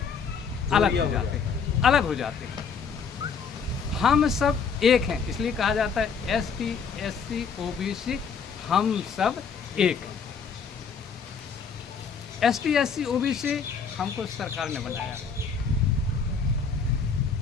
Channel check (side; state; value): right; quieter; 5.9 dB